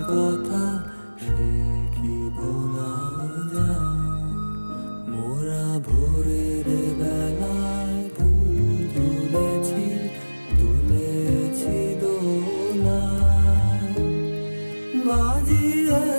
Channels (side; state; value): both; inverted; correlation -1.00